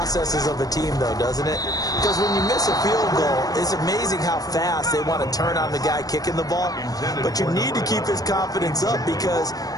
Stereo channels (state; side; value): late; right; 0.18 ms